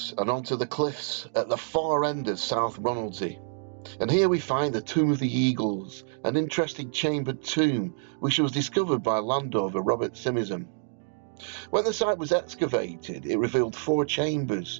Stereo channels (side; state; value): left; silent; digital silence